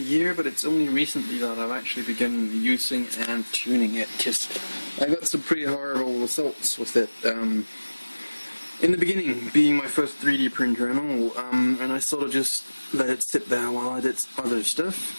but it's only recently that I've actually begun using and tuning it, because I got some pretty horrible results with it. In the beginning, being my first 3D printer and all, and I sort of just let it sit there while I did other stuff.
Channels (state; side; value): inverted; both; correlation -1.00